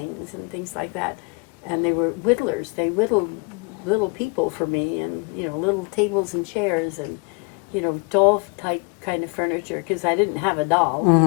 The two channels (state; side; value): quieter; right; 33.7 dB